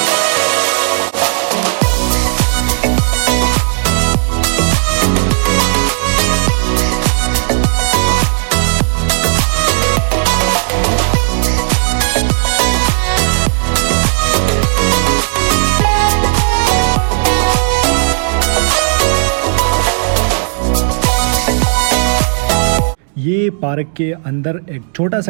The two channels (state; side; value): silent; left; digital silence